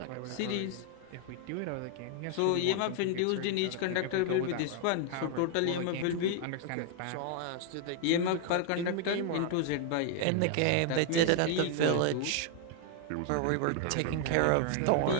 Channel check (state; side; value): different; both; correlation 0.00